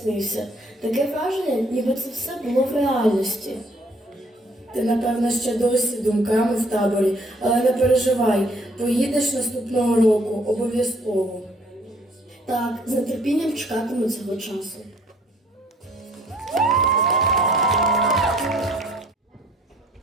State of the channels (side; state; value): both; normal; correlation 0.61